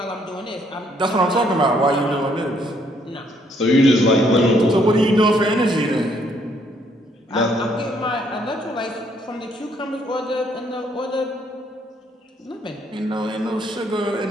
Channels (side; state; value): both; normal; correlation 0.68